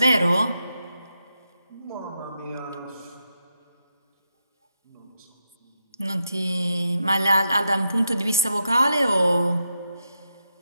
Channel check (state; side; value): inverted; both; correlation -0.84